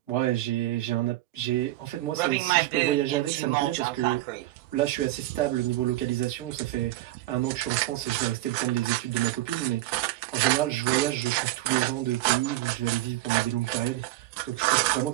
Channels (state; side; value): quieter; left; 16.5 dB